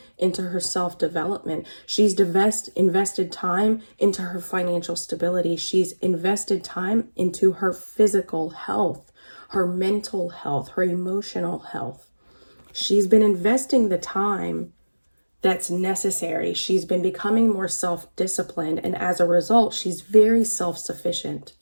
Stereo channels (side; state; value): both; inverted; correlation -1.00